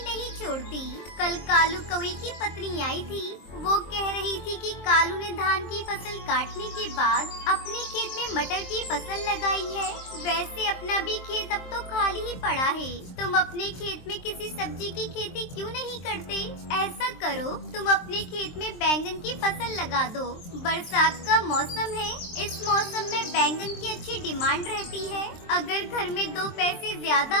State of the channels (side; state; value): right; late; 23 ms